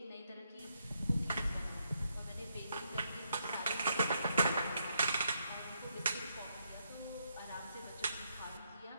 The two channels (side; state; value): both; inverted; correlation -0.77